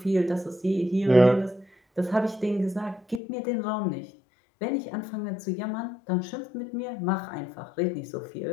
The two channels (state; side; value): drops out; right; at 3.2 s